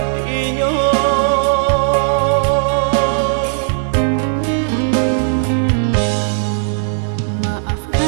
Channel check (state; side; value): silent; left; 60 dB below the other